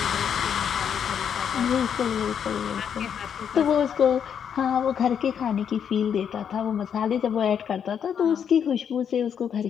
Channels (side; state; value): right; quieter; 8.0 dB